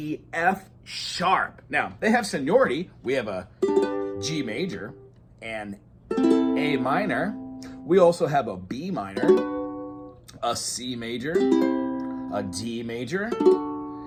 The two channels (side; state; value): both; identical; correlation 1.00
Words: F sharp. Now, they have seniority. We have a G major and A minor. We also have a B minor, a C major, a D major,